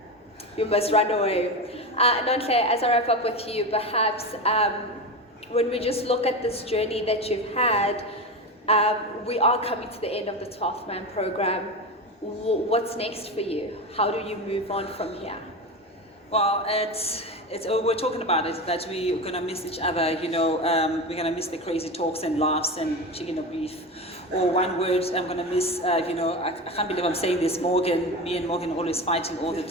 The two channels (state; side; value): normal; both; correlation 0.22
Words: you must run away. Nontle, as I wrap up with you, perhaps when we just look at this journey that you've had, We are coming to the end of the 12th Man program. What's next for you? How do you move on from here? Well, we're talking about it, that we're going to miss each other, we're going to miss the crazy talks and laughs and chicken or beef. Or one word I'm going to miss, I can't believe I'm saying this, Morgan, me and Morgan are always fighting all the